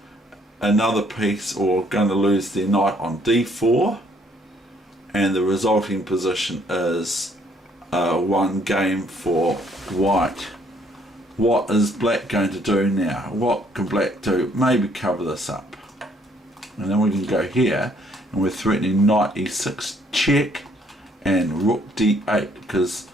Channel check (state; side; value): normal; both; correlation 0.65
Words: another piece, or going to lose their knight on d4. And the resulting position is one game for white. What is black going to do now? What can black do? Maybe cover this up. And then we can go here, and we're threatening knight e6 check and rook d8, because